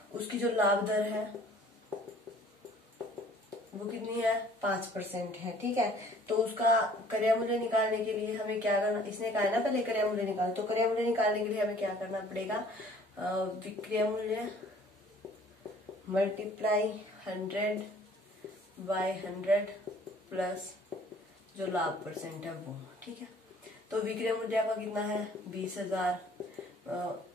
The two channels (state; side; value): normal; both; correlation 0.54